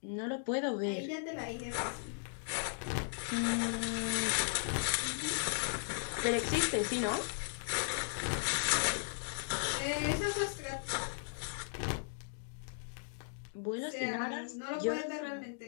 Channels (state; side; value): silent; right; digital silence